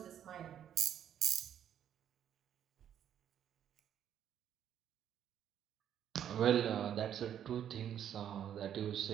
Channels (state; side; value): quieter; left; 9.8 dB